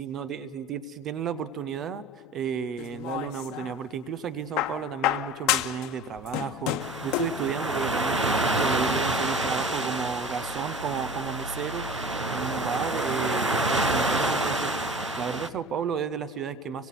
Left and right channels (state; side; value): normal; both; correlation 0.39